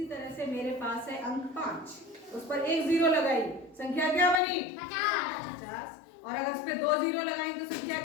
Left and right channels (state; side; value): drops out; right; at 4.4 s